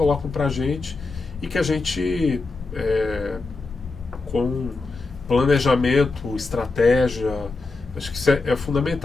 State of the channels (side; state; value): right; quieter; 3.7 dB